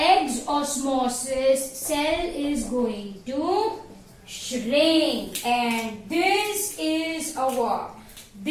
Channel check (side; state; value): both; identical; correlation 1.00